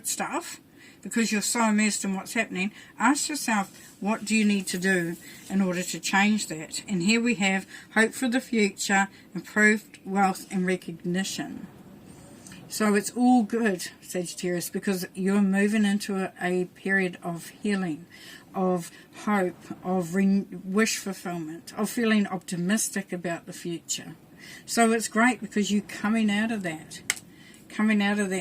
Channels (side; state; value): both; identical; correlation 1.00